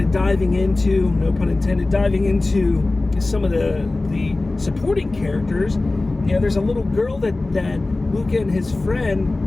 diving into, no pun intended, diving into some of the supporting characters. There's a little girl that Luca and his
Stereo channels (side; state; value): right; quieter; 3.1 dB